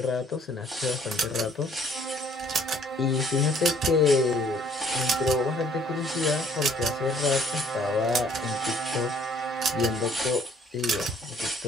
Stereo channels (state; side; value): normal; both; correlation 0.59